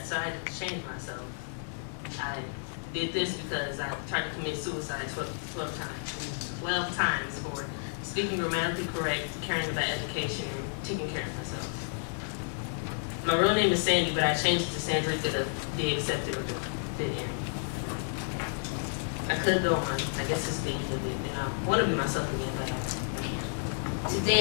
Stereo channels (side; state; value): right; silent; 56 dB below the other